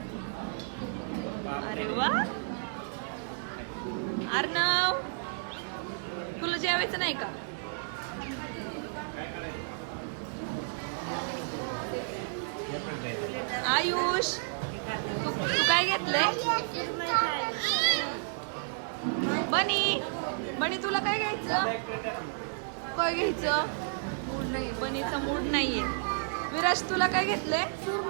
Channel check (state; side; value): silent; left; digital silence